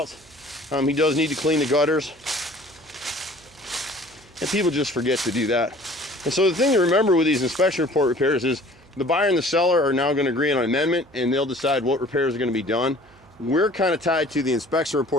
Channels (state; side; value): noise; right; hum, 28 dB below the sound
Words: He does need to clean the gutters. And people just forget to do that. And so the thing to remember with these inspection report repairs is the buyer and the seller are now going to agree on an amendment, and they'll decide what repairs are going to be done. We're kind of tied to the inspection